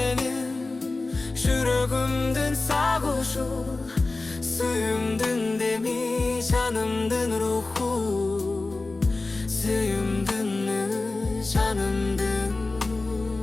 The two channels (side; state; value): right; quieter; 3.4 dB